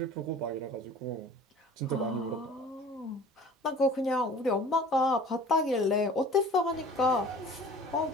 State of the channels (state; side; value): normal; both; correlation 0.45